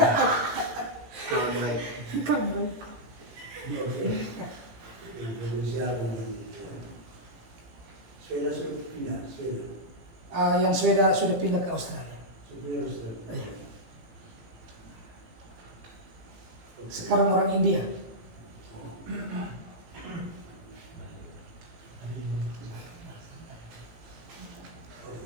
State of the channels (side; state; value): left; late; 18 ms